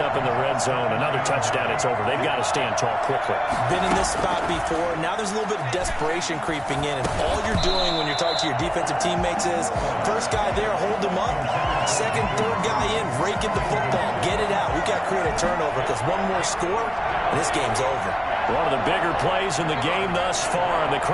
in the red zone. Another touchdown, it's over. They've got to stand tall quickly. Been in this spot before. Now there's a little bit of desperation creeping in, and all you're doing when you're talking to your defensive teammates is, first guy there, hold him up. 2nd, 3rd guy in, rake at the football. Get it out. We've got to create a turnover because one more score, and this game's over. One of the bigger plays in the game thus far, and the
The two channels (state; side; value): identical; both; correlation 1.00